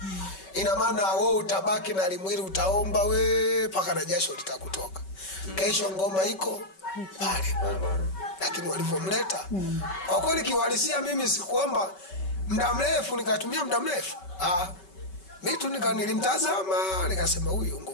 ina maana wewe utabaki na limwili, utaomba paka na jasho litakutoka. Kesho ngoma iko pale. Lakini walivomleta, kwa kweli kiwalisia mimi sikuomba muda mrefu, nikatumia muda mrefu. Mimi nilimtazama, nikasema huyu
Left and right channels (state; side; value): late; right; 5.3 ms